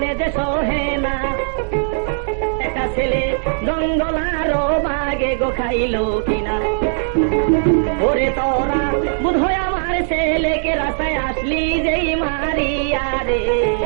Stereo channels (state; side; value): silent; left; digital silence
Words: যে সহে না, একটা ছেলে জঙ্গল আরো বাগে গো খাইল কিনা, ওরে তোরা বুধ হয় আমার ছেলেকে রাস্তায় আসলি যেই মারিয়া রে।